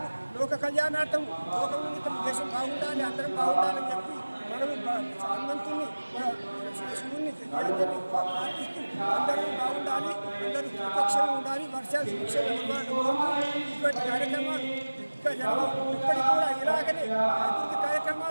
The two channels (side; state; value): both; inverted; correlation -1.00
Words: లోక కళ్యాణార్థం, లోకమునితం, దేశం బాగుండాలి, అందరం బాగుండాలని చెప్పి మనము హనుమంతుని, శివుని ప్రార్థిస్తూ అందరూ బాగుండాలి, అందరూ సురక్షగా ఉండాలి, వర్షాలు సురక్షగా ఇటువంటి కార్యక్రమాలు ఇంకా ఇప్పటికి కూడా ఇలాగనే అభివృద్ధి